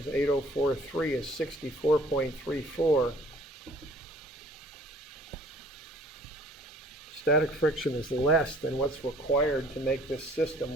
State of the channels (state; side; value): normal; both; correlation 0.53